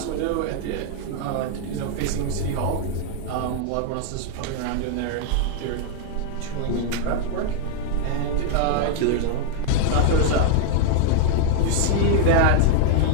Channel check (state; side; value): different; both; correlation 0.00